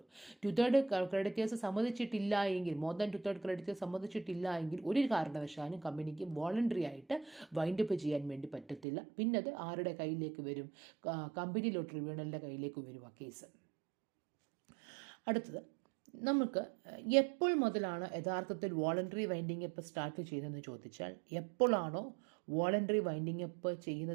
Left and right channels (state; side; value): drops out; left; at 8.8 s